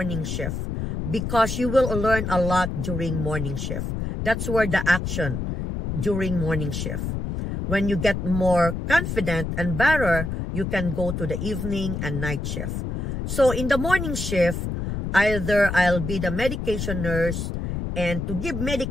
shift because you will learn a lot during morning shift. That's where the action during morning shift. When you get more confident and better, you can go to the evening and night shift. So in the morning shift, either I'll be the medication nurse, and to give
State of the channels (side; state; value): left; noise; rumble, 4 dB below the sound